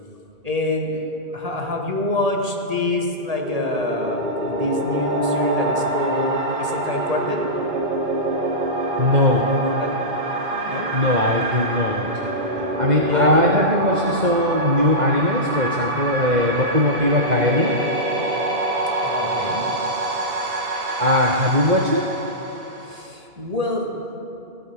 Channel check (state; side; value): late; left; 1.8 ms